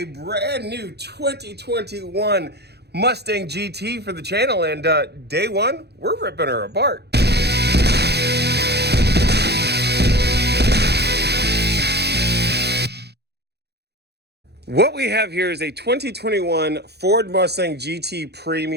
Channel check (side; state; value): left; late; 0.48 ms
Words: brand new 2021 Mustang GT for the channel, and day one, we're ripping her apart. What we have here is a 2021 Ford Mustang GT